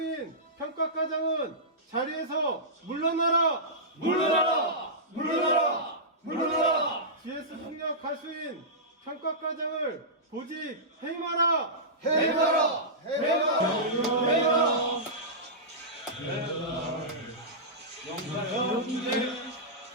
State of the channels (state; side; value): normal; both; correlation -0.16